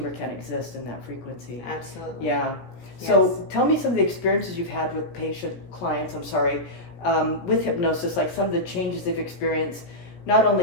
can't exist in that frequency. Yeah. So tell me some of the experiences you've had with clients, with hypnosis, like some of the changes they've experienced, not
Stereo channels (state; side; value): late; right; 17 ms